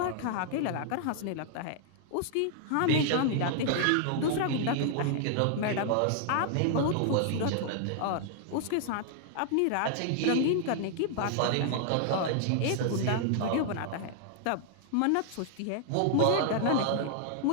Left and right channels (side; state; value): both; different; correlation 0.00